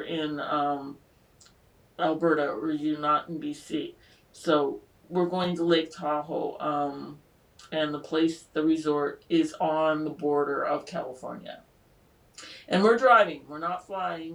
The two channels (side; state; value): both; identical; correlation 1.00